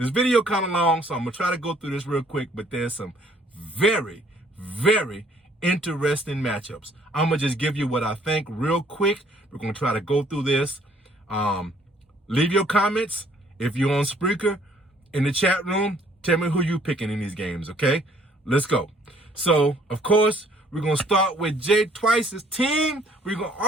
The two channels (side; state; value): both; normal; correlation 0.61